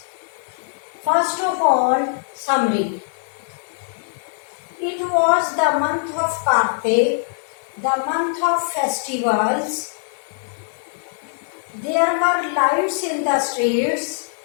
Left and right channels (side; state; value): right; silent; 64 dB below the other